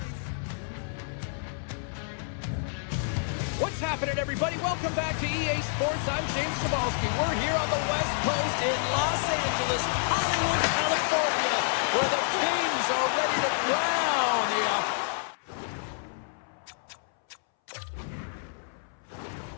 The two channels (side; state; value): right; silent; 59 dB below the other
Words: What's happening, everybody? Welcome back to EA Sports. I'm James Cebulski. We're here on the West Coast in Los Angeles, Hollywood, California, where the Kings are ready to crown the